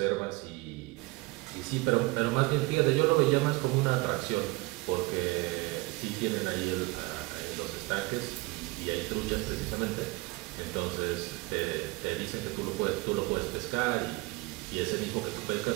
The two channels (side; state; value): left; quieter; 23.3 dB